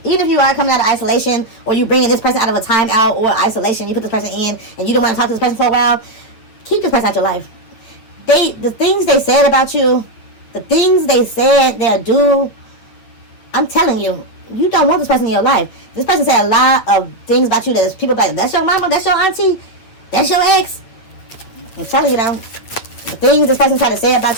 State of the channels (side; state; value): right; late; 8.9 ms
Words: Even if you are coming out of isolation, or you bringing this person out of a timeout or isolation, you put this person in, and you don't want to talk to this person for a while, keep this person out your life. The things they said about you, the things they said they'll do, I'm telling you, you don't want this person in your life. This person said a lot of things about you that people like, that's your mama, that's your auntie, that's your ex. I'm telling you now, the things this person tried to say